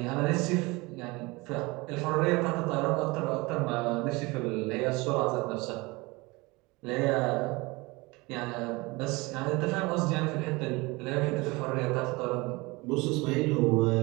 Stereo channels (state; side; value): quieter; left; 24.1 dB